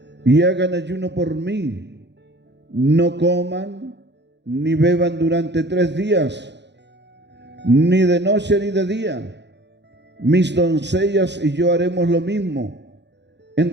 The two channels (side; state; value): left; late; 0.51 ms